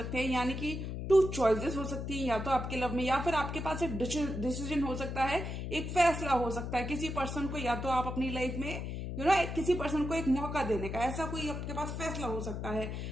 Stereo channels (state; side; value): noise; left; hum, 5 dB below the sound